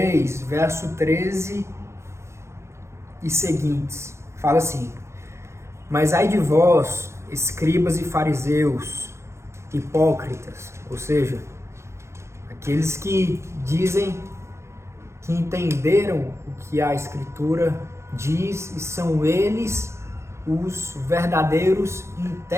verso 13 e seguintes. Fala assim: Mas ai de vós, escribas e fariseus, hipócritas, ou seja, aqueles que dizem que entenderam o que a Escritura diz e são eles os verdadeiros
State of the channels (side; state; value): left; late; 0.13 ms